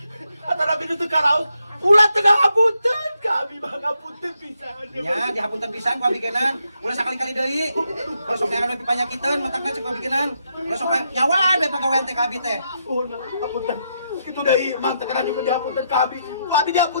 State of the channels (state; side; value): inverted; both; correlation -0.80